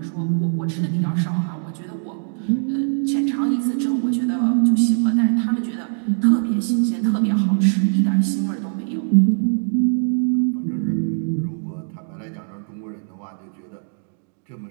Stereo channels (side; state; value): left; silent; 65 dB below the other